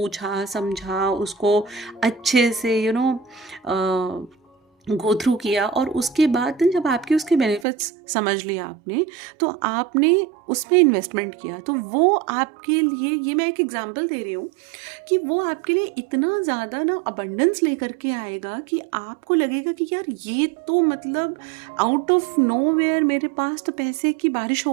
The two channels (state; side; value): drops out; left; at 7.7 s